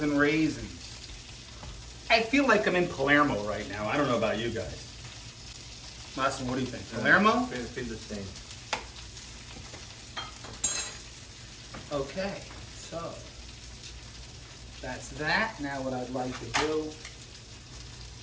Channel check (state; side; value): identical; both; correlation 1.00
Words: raisins. I feel like I'm in Palermo right now. I don't know about you guys. Massimo, what do you think? Palermo? Feel the same. Okay, so that's that. Now what I'd like to do,